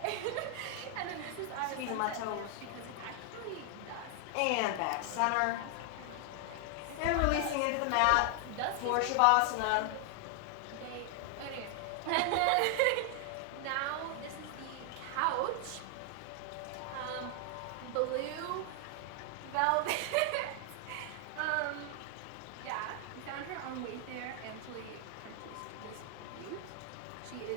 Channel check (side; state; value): both; different; correlation 0.00